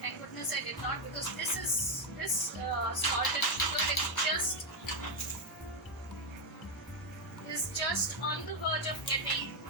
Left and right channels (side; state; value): both; normal; correlation 0.05